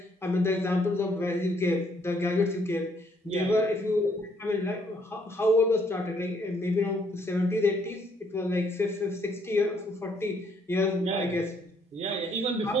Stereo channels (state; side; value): normal; both; correlation 0.68